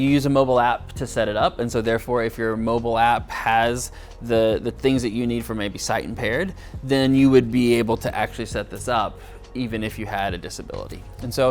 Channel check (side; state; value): both; identical; correlation 1.00